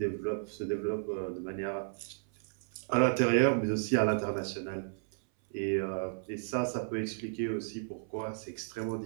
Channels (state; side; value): silent; left; 56 dB below the other